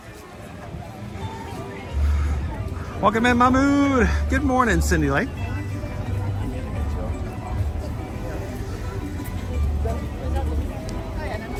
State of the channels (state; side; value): identical; both; correlation 1.00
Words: Welcome in, Mahmood. Good morning, Cindy Lake.